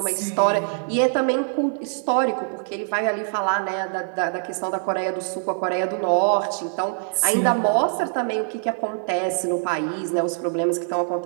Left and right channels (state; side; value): silent; left; 58 dB below the other